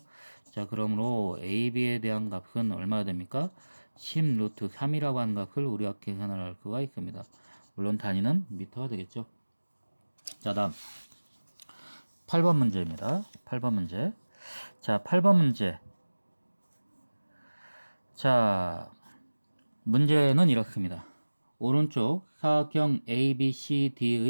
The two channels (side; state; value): both; inverted; correlation -1.00